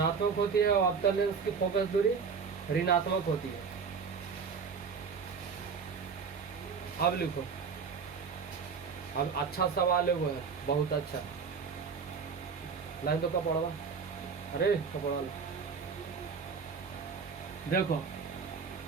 होती है और अवतल लेंस की फोकस दूरी ऋणात्मक होती है। अब लिखो, अब अच्छा सवाल है वो है, बहुत अच्छा। लाइन तो कपड़ा, अरे कपड़ा लो। देखो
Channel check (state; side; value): quieter; left; 5.7 dB